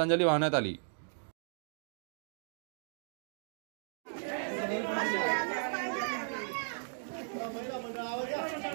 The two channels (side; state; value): left; silent; digital silence